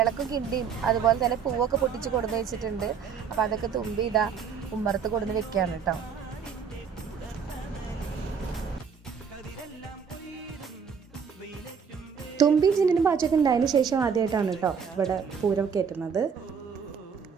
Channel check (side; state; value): left; quieter; 6.6 dB